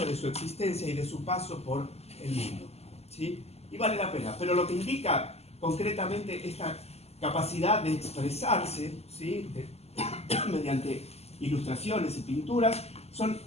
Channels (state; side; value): late; right; 0.30 ms